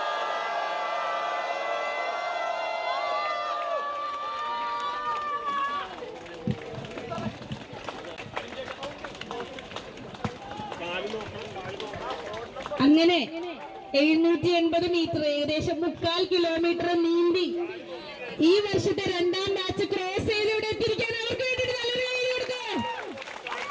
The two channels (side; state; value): both; identical; correlation 1.00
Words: അങ്ങനെ 780 മീറ്റർ, ഏകദേശം 3/4 കിലോമീറ്റർ നീന്തി ഈ വർഷത്തെ 2ാം ബാച്ച് ക്രോസ് ചെയ്തിവിടെ എത്തിയിരിക്കാൻ അവർക്ക് വേണ്ടിയിട്ട് നല്ലൊരു കൈ കൊടുക്കുക.